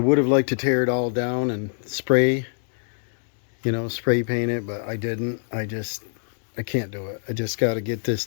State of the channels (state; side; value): silent; right; digital silence